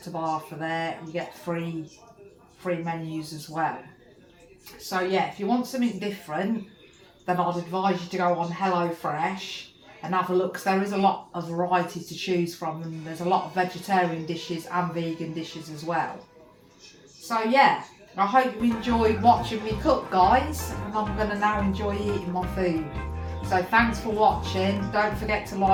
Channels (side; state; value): both; identical; correlation 1.00